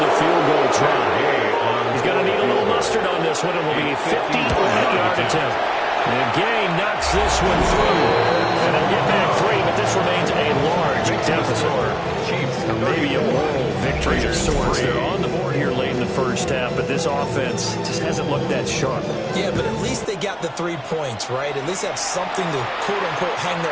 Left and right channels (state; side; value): identical; both; correlation 1.00